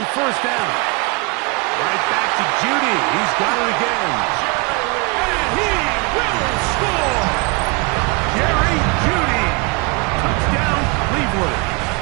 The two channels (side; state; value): left; quieter; 29.7 dB